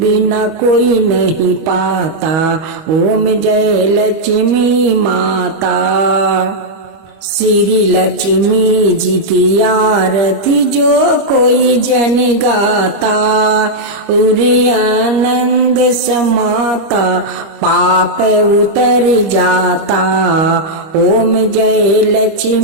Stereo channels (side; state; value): left; late; 25 ms